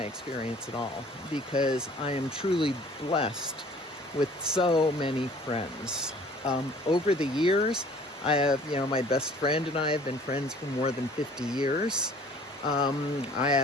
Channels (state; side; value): normal; both; correlation 0.52